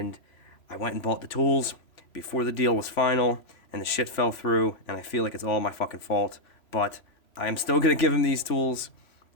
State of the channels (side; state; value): right; late; 3.0 ms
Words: I went and bought the tools before the deal was final, and the shit fell through, and I feel like it's all my fucking fault. But I am still gonna give him these tools,